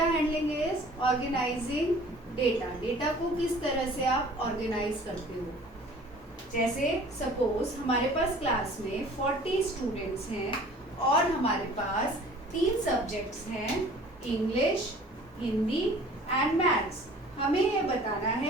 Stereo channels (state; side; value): normal; both; correlation 0.49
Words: handling is organizing data. Data को किस तरह से आप organize करते हो? जैसे suppose हमारे पास क्लास में 40 स्टूडेंट्स हैं और हमारे पास 3 सब्जेक्ट्स हैं, इंग्लिश, हिंदी एंड मैथ्स. हमें ये बताना